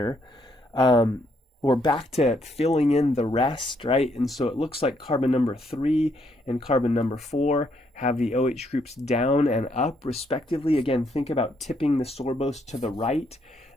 We're back to filling in the rest, right? And so it looks like carbon number 3 and carbon number 4 have the OH groups down and up respectively. Again, think about tipping the sorbose to the right.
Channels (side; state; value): both; normal; correlation 0.73